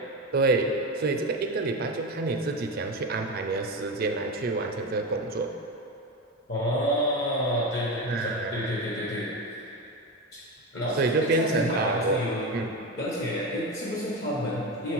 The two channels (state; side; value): normal; both; correlation 0.19